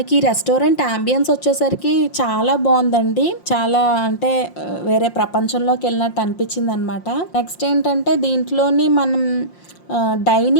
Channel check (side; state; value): right; late; 5.7 ms